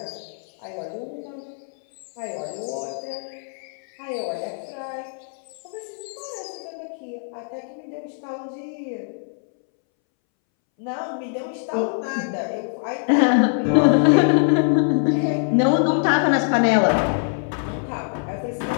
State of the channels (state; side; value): silent; right; 63 dB below the other